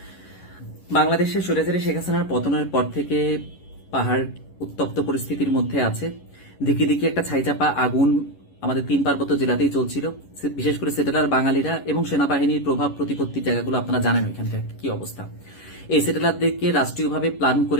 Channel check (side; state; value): right; late; 11 ms